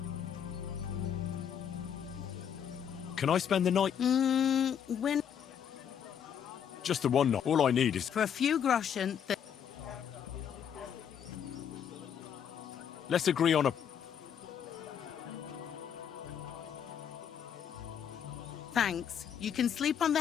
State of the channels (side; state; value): right; quieter; 8.4 dB